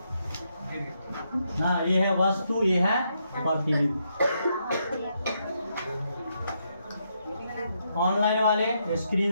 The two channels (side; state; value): both; inverted; correlation -0.79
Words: हाँ ये है वस्तु, ये है प्रतिबिंब। ऑनलाइन वाले